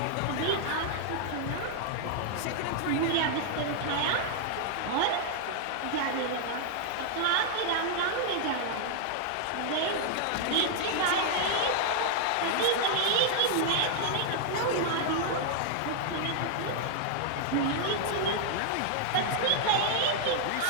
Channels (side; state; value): both; different; correlation -0.01